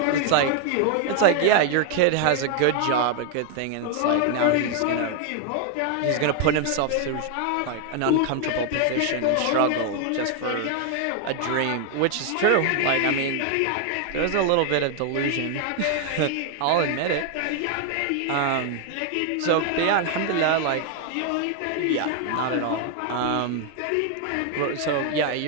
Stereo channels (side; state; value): both; different; correlation 0.00